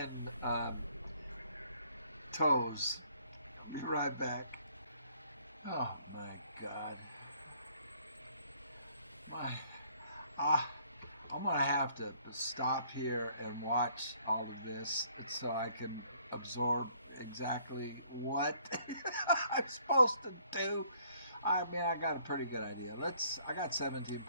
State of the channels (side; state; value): both; inverted; correlation -0.63